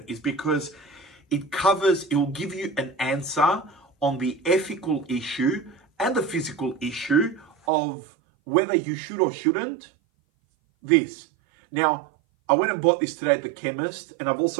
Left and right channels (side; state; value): left; drops out; at 7.6 s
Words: is because it will give you an answer on the ethical issue and the physical issue of whether you should or shouldn't this. Now, I went and bought this today at the chemist, and I've